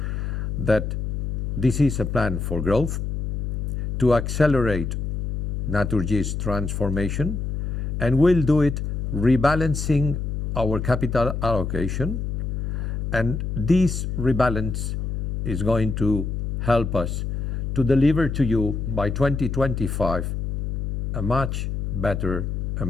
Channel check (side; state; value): left; noise; hum, 2 dB below the sound